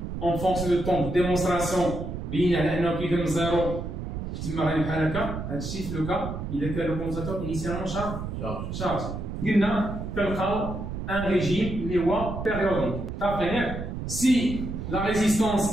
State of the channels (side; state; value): right; noise; rumble, 6 dB below the sound